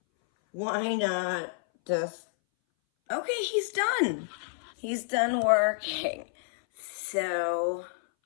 why not just... Okay, he's done. He's done working. So,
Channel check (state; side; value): silent; right; 58 dB below the other